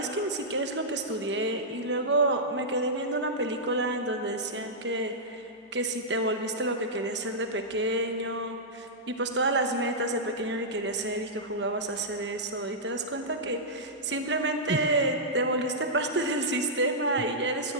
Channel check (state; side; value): normal; both; correlation -0.11